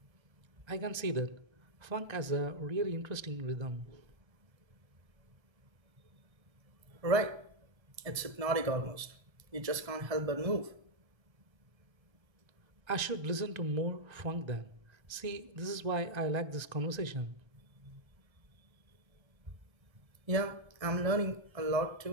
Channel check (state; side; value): late; left; 1.3 ms